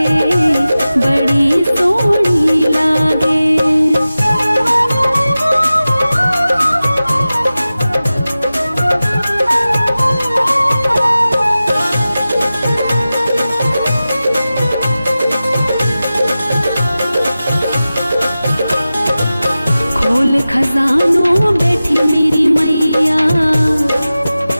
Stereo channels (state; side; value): inverted; both; correlation -0.95